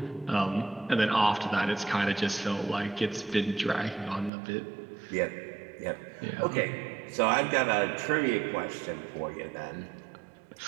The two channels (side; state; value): left; drops out; at 4.3 s